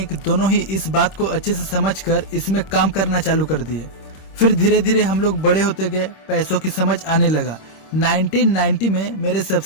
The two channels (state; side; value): late; right; 26 ms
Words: दोनों ही इस बात को अच्छे से समझकर इसमें काम करना चालू कर दिए। फिर धीरे धीरे हम लोग बड़े होते गए, पैसों की समझ आने लगा। 1990 में मेरे